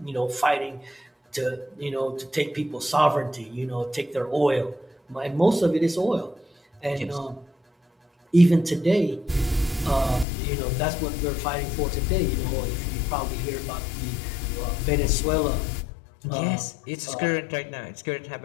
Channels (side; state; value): right; drops out; at 10.2 s